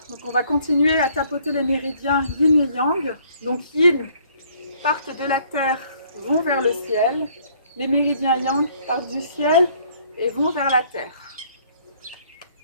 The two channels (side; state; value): both; inverted; correlation -0.61